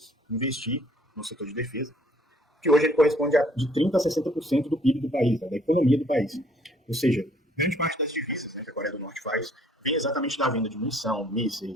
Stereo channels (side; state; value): both; normal; correlation 0.61